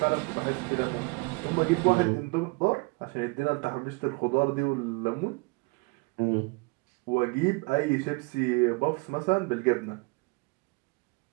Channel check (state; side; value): quieter; left; 29.1 dB